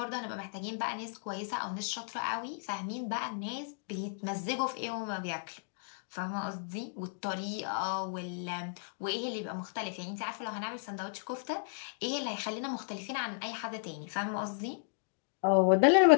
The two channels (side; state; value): right; silent; digital silence